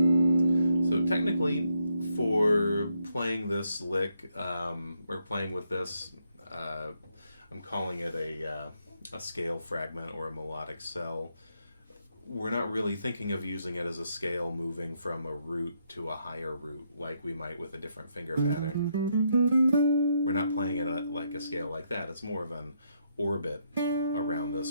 So technically, for playing this lick, or playing with this, I'm calling it a scale fragment or a melodic cell. We're not really thinking of using it as a scale moving from a root to a higher root like we might with a different finger pattern. We're not playing it like a scale like that. It's more of an orbit around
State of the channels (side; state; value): both; inverted; correlation -0.77